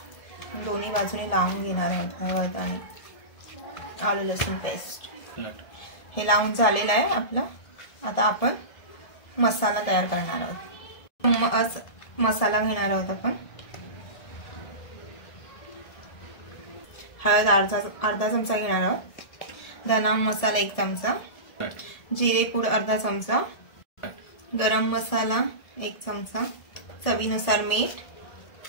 दोन्ही बाजूने लावून घेणार आहोत। हळद आणि आलं लसूण पेस्ट हे लावून झालेलं आहे आपलं। आता आपण मसाला तयार करणार आहोत। मसाला घेणार आहोत आपण। हळद अर्धा चमचा घेणार आहोत, धना मसाला 1 चमचा, जिरे पूड अर्धा चमचा, गरम मसाला 1 चमचा, चवीनुसार मीठ,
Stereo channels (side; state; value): right; late; 1.7 ms